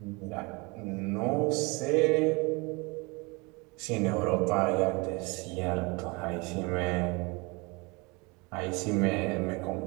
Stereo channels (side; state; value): left; quieter; 27.4 dB